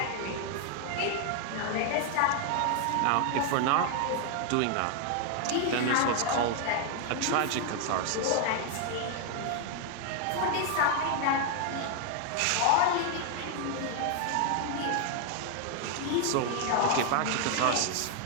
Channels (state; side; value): different; both; correlation 0.00